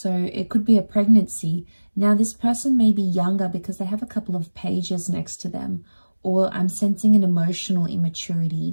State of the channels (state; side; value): inverted; both; correlation -1.00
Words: it could be a pregnancy. Now this person may be younger because they have a couple of pages next to them, or I'm sensing an emotional